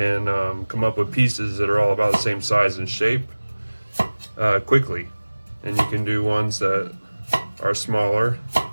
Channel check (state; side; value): inverted; both; correlation -1.00